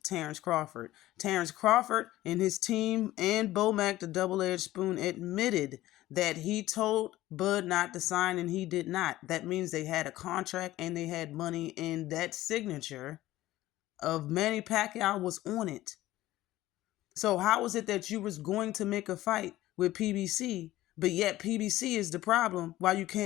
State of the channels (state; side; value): quieter; right; 15.8 dB